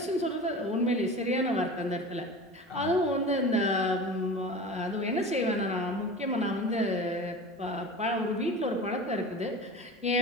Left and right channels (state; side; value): normal; both; correlation 0.34